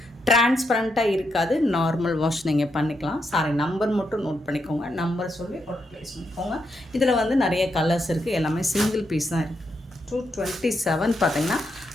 டிரான்ஸ்பரண்ட்டாக இருக்காது, நார்மல் வாஷ் நீங்கள் பண்ணிக்கலாம். சாரி நம்பர் மட்டும் நோட் பண்ணிக்கோங்க, நம்பர் சொல்லி ஆர்டர் ப்ளேஸ் பண்ணிக்கோங்க. இதில் வந்து நிறைய கலர்ஸ் இருக்குது, எல்லாமே சிங்கிள் பீஸ் தான் இருக்குது. 227 பார்த்தீங்கன்னா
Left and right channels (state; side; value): normal; both; correlation 0.81